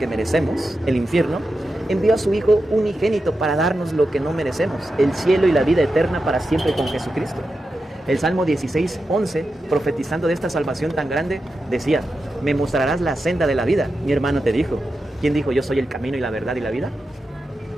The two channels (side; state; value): both; normal; correlation 0.90